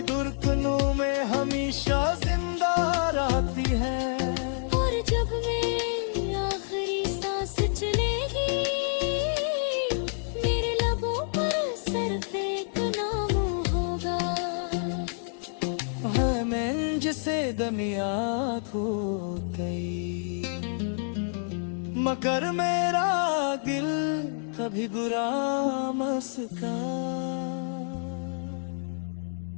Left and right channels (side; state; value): right; silent; digital silence